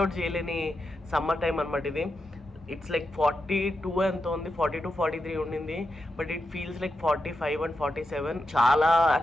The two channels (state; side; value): normal; both; correlation 0.87